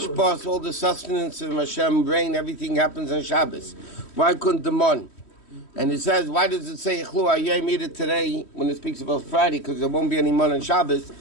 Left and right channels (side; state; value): right; late; 3.1 ms